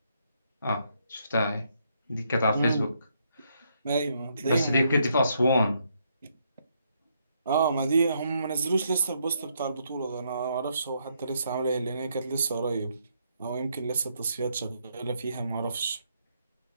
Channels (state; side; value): inverted; both; correlation -0.75